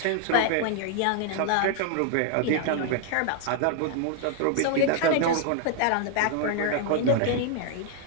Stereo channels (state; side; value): different; both; correlation 0.00